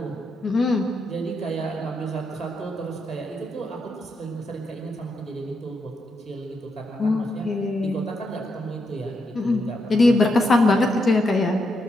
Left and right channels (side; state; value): both; normal; correlation 0.81